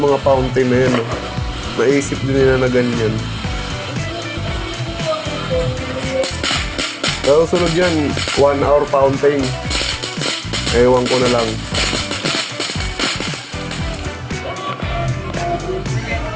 fountain na yan, no? Naisip din nila na ganyan. Pero sunod yan, 1 hour fountain. Ewan ko na lang.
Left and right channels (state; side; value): identical; both; correlation 1.00